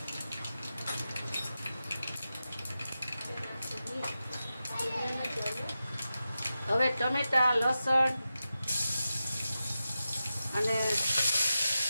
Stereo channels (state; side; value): inverted; both; correlation -0.91